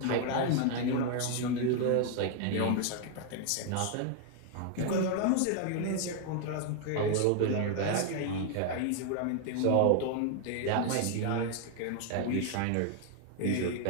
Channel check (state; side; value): different; both; correlation 0.00